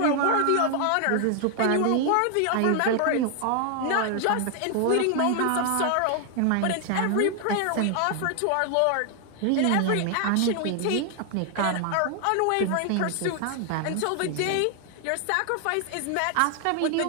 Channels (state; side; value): different; both; correlation 0.00